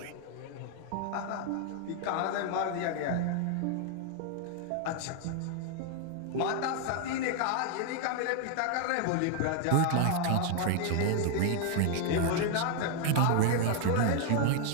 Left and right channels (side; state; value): both; different; correlation 0.00